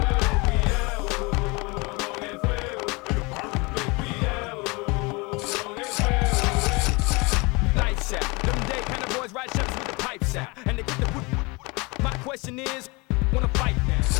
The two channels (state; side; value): quieter; right; 27.0 dB